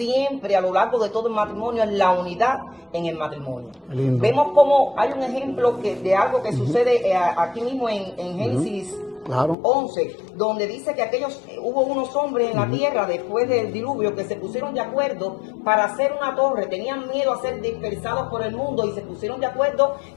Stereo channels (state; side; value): drops out; right; at 9.6 s